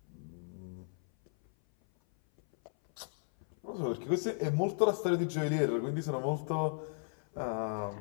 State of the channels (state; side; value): silent; right; 55 dB below the other